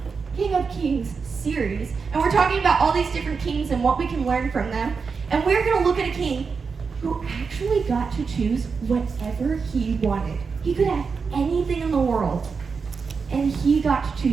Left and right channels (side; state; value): left; quieter; 5.2 dB